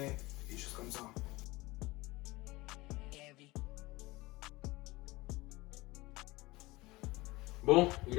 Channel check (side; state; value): right; quieter; 21.1 dB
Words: et des choses comme ça. Bon, il